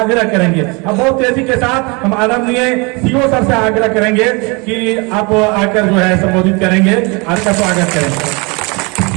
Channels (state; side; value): quieter; left; 28.9 dB